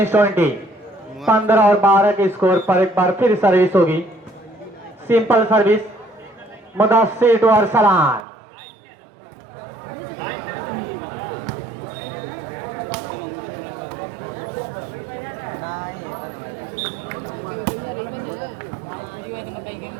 20, 15 और 12 के स्कोर पर एक बार फिर सर्विस होगी। Simple service, Mudassir to Arsalan,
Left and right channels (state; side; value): drops out; left; at 8.2 s